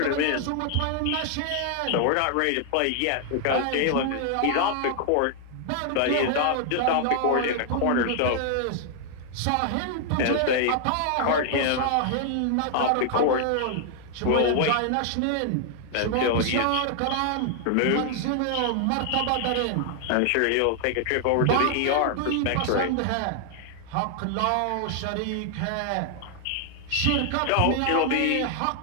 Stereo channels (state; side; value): different; both; correlation 0.00